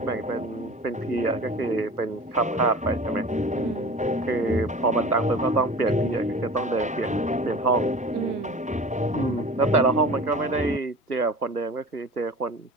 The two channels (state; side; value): normal; both; correlation 0.39